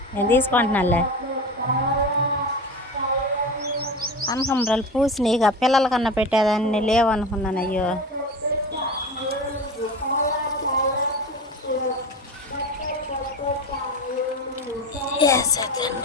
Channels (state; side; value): normal; both; correlation 0.29